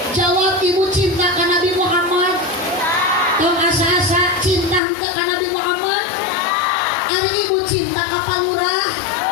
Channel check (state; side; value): drops out; right; at 4.8 s